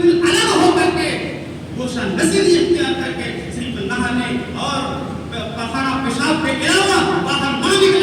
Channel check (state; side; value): identical; both; correlation 1.00